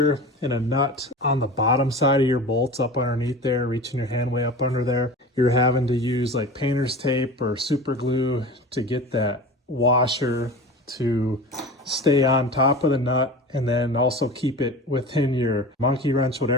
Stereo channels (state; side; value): normal; both; correlation 0.33